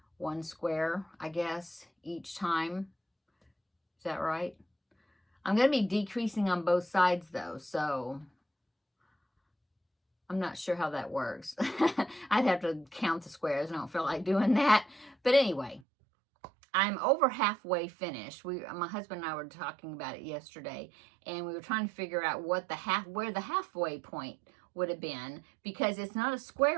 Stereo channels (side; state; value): left; drops out; at 15.8 s